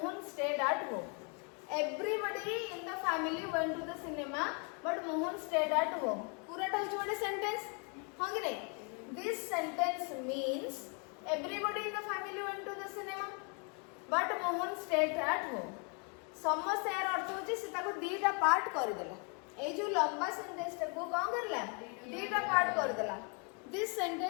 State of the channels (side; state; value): right; quieter; 36.5 dB